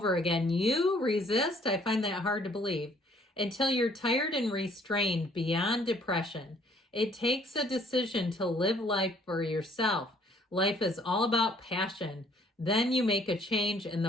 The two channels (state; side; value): normal; both; correlation 0.61